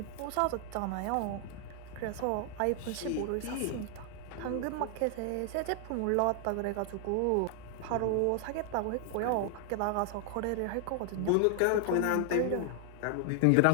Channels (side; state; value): both; different; correlation 0.00